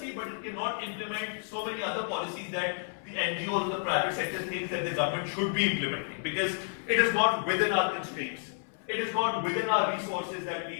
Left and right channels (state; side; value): silent; right; 57 dB below the other